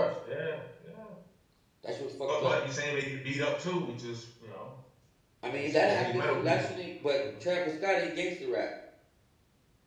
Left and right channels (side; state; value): both; identical; correlation 1.00